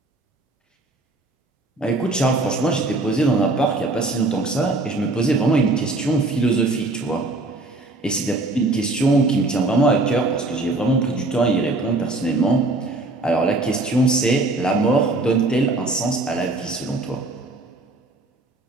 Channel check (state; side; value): quieter; left; 3.0 dB